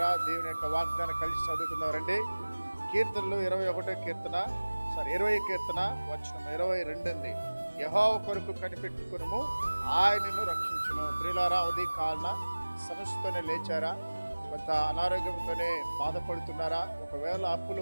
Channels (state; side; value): inverted; both; correlation -1.00